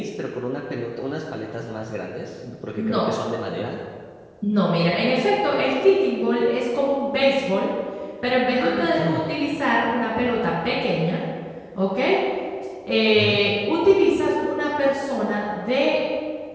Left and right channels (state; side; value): identical; both; correlation 1.00